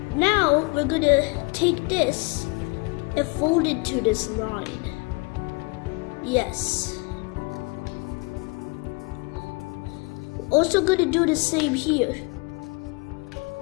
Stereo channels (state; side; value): quieter; right; 28.3 dB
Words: Now we're gonna take this and fold it to this line. Yes. Also gonna do the same here.